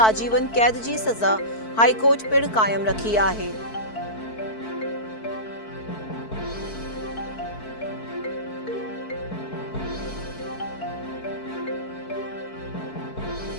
आजीवन कैद जी सज़ा हाई कोर्ट पिणु क़ाइम रखी आहे।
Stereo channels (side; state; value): right; late; 4.6 ms